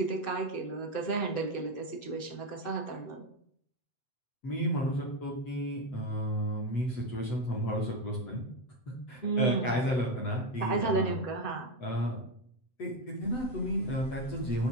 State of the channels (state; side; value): late; right; 7.9 ms